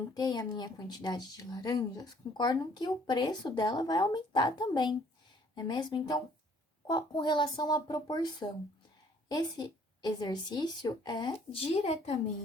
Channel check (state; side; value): normal; both; correlation 0.60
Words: a minha quantidade de laranjas, concordam que o preço dela vai aumentar também, não é mesmo? Então, com relação à proporção, esse exercício é